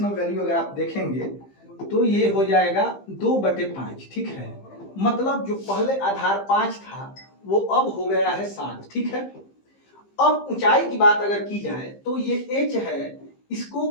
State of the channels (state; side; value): late; right; 15 ms